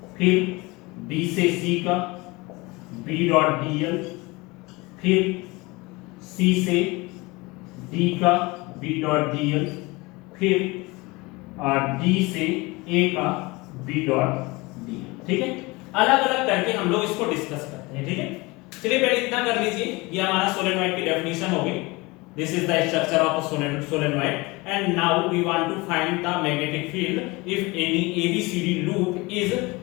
फिर b से c का b डॉट dl, फिर c से d का b डॉट dl, फिर d से a का b डॉट dl। ठीक है, अलग अलग करके हम लोग इसको डिस्कस करते हैं। ठीक है, चलिए पहले इतना कर लीजिए, ये हमारा सोलेनॉइड की डेफिनेशन हो गई। This is the structure of a solenoid and now we want to find the magnetic field if any ABCD loop is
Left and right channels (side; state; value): right; quieter; 23.9 dB